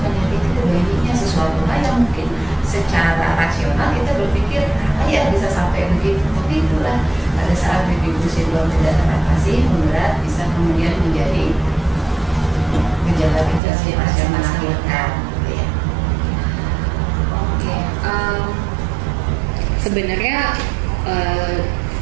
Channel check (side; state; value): left; drops out; at 13.6 s